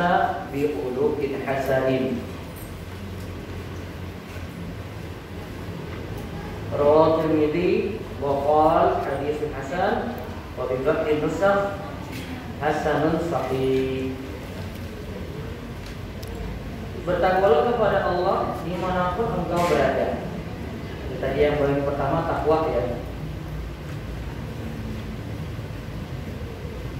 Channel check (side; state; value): both; identical; correlation 1.00